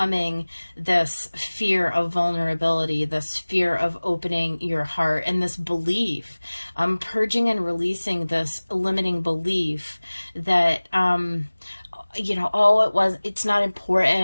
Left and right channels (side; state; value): both; inverted; correlation -1.00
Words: this fear of vulnerability, this fear of opening your heart, and this belief, purging and releasing this limiting belief that, it's not